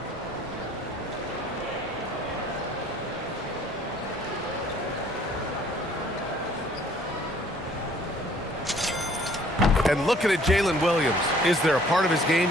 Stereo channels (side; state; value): both; normal; correlation 0.58